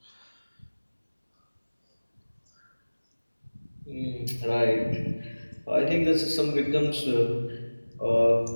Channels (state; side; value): inverted; both; correlation -1.00